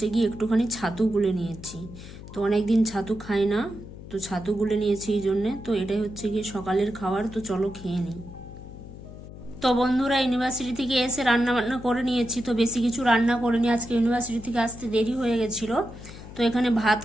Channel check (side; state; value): left; noise; hum, 14 dB below the sound